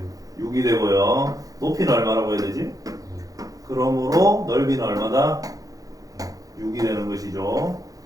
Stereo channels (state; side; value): late; left; 0.17 ms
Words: 6이 되고요. 높이는 얼마라고 해야 되지? 그러므로 넓이는 얼마다? 6이 되는 것이죠.